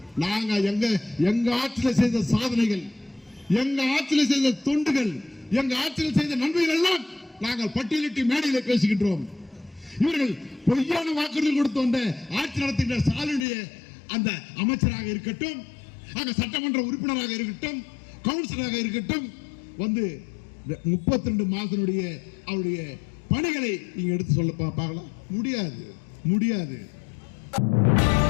நாங்க எங்க ஆட்சியில் செய்த சாதனைகள், எங்க ஆட்சியில் செய்த தொண்டுகள், எங்க ஆட்சியில் செய்த நன்மைகள் எல்லாம் நாங்கள் பட்டியலிட்டு மேடையில் பேசுகின்றோம். இவர்கள் பொய்யான வாக்குறுதி கொடுத்து வந்த ஆட்சி நடத்துகின்ற ஸ்டாலினுடைய அந்த அமைச்சராக இருக்கட்டும், அங்க சட்டமன்ற உறுப்பினராக இருக்கட்டும், கவுன்சிலராக இருக்கட்டும் வந்து 32 மாதத்தினுடைய அவருடைய பணிகளை நீங்க எடுத்து சொல்ல பார்க்கலாம். முடியாது, முடியாது.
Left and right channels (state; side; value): drops out; right; at 13.5 s